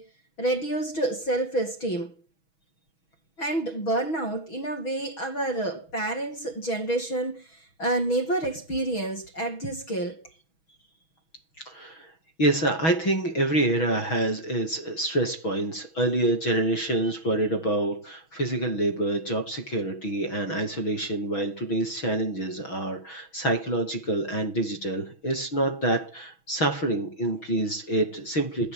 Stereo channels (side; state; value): right; late; 6.2 ms